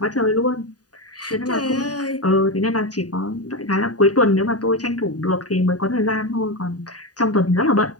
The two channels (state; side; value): late; right; 0.68 ms